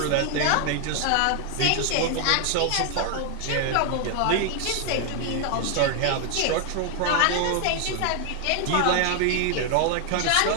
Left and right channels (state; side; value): different; both; correlation 0.00